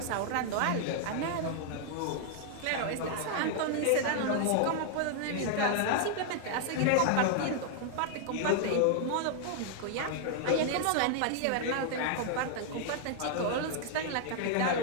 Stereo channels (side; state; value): both; different; correlation -0.01